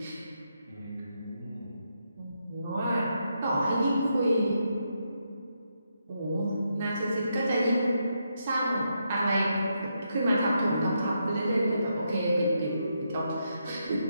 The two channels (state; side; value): inverted; both; correlation -0.81